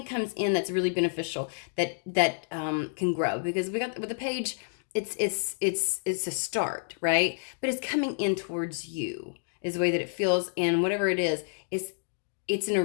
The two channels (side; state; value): right; silent; digital silence